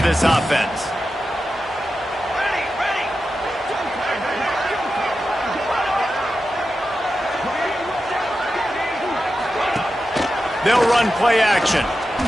offense. They'll run play action.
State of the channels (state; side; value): normal; both; correlation 0.91